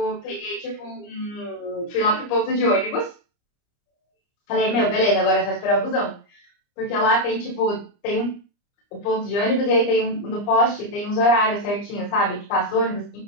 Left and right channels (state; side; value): late; right; 29 ms